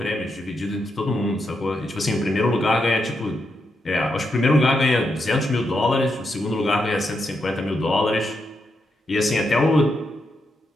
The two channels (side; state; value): both; normal; correlation 0.83